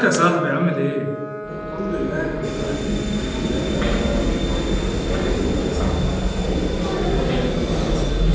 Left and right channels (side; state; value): both; identical; correlation 1.00